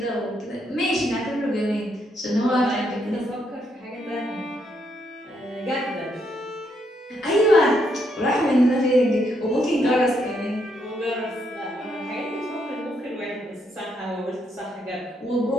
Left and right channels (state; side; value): normal; both; correlation 0.76